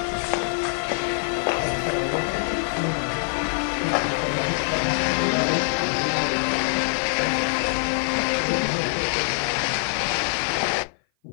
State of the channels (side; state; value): right; silent; 57 dB below the other